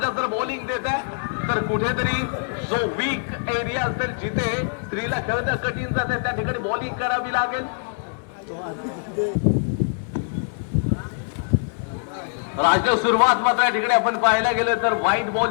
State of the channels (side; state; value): right; silent; digital silence